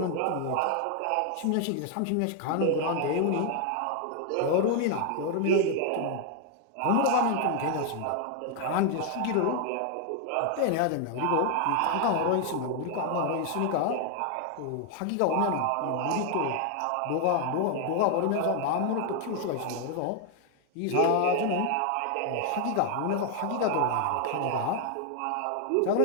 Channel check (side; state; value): both; different; correlation 0.00